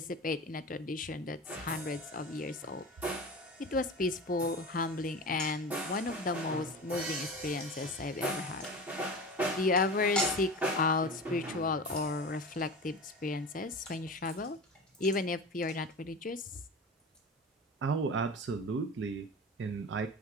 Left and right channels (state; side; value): normal; both; correlation 0.30